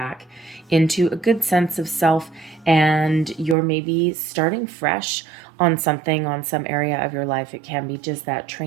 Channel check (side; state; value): left; drops out; at 3.6 s